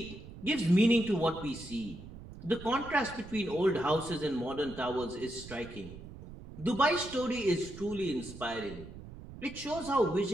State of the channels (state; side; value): noise; right; rumble, 14 dB below the sound